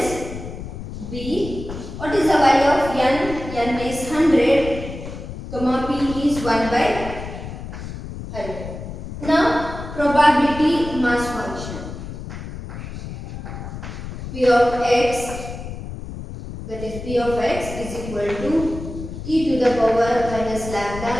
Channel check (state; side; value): noise; left; rumble, 10 dB below the sound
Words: B. What is the value of N? N is 100, comma P is 1 by 100. Now probability mass function. P of X, that is P of X is equal to e to the power minus lambda,